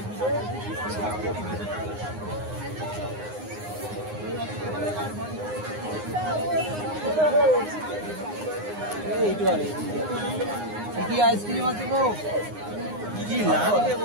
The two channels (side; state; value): left; late; 9.7 ms